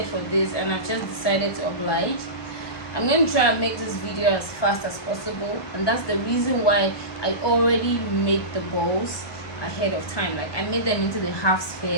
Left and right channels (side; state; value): right; late; 1.2 ms